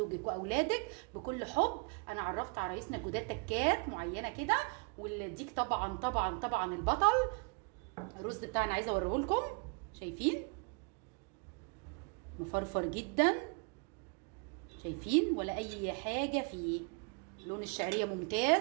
واولادك بكل حب. انا عرفت عرايسنا الجداد تكات معينه كده، والديك طبعا طبعا طبعا البطل. الرز بتاعنا عايزه اوريه لكم، شايفين مفرفر جدا، شايفين ولا اي حاجه فيه. لون الشعريه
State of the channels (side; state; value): left; quieter; 34.8 dB